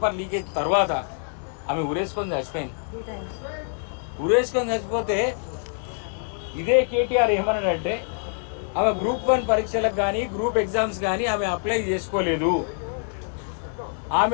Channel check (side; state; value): right; silent; 62 dB below the other